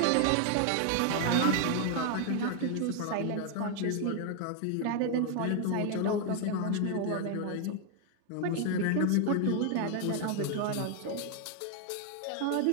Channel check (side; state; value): both; different; correlation 0.00